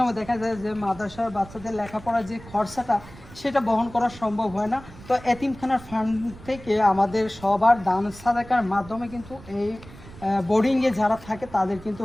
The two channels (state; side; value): noise; right; rumble, 18 dB below the sound